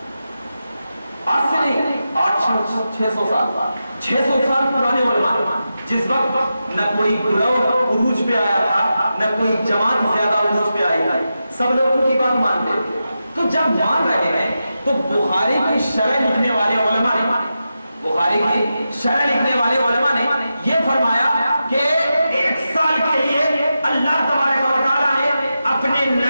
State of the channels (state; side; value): inverted; both; correlation -0.90